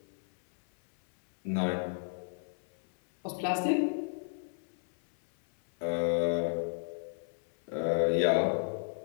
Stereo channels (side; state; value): right; silent; 56 dB below the other